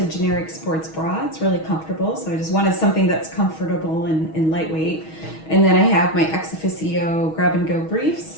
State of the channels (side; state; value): right; late; 6.3 ms